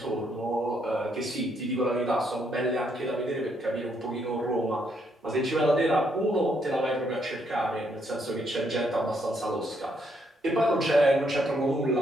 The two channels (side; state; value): both; normal; correlation 0.74